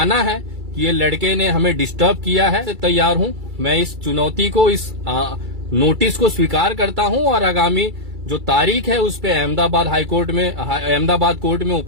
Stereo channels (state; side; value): late; left; 2.3 ms